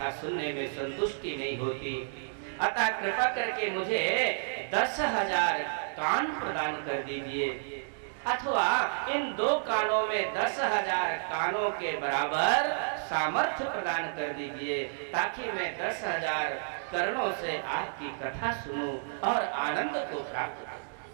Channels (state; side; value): silent; left; digital silence